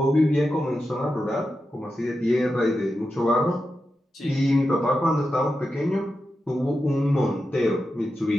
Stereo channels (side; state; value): both; normal; correlation 0.90